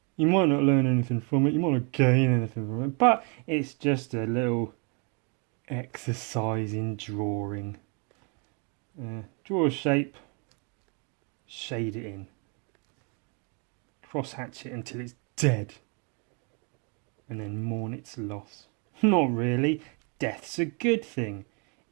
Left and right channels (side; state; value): left; quieter; 35.3 dB